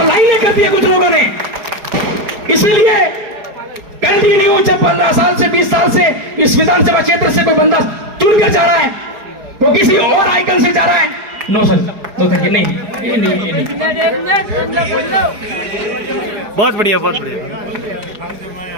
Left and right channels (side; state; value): left; late; 4.8 ms